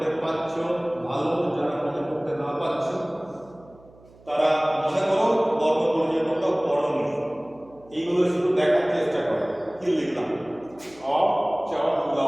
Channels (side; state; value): right; noise; hum, 26 dB below the sound